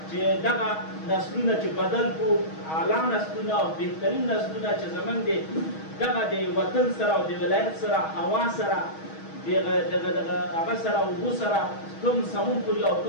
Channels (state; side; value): late; right; 6.3 ms